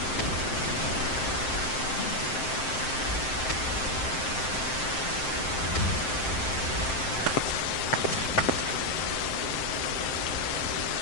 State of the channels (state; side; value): late; right; 7.7 ms